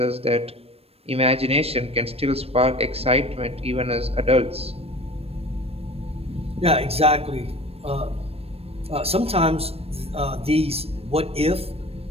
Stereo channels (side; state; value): left; late; 0.28 ms